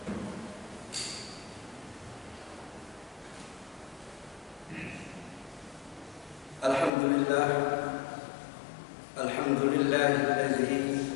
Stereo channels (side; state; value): right; drops out; at 6.9 s